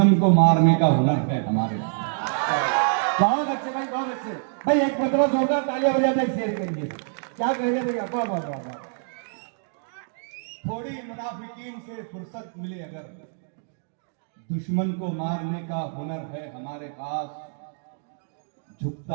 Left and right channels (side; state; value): left; silent; digital silence